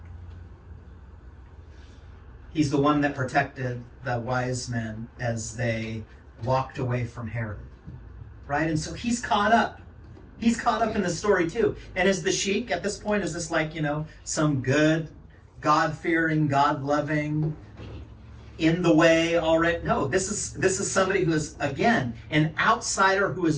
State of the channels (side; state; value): both; identical; correlation 1.00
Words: He's the one that protected the wise men as they walked away from Herod. Right? And so he's caught up. He's caught up in the story too. And is the sheik at this point, is this like, some good, God-fearing, God-loving, in the way already? No, this is somebody who is, again, an outsider who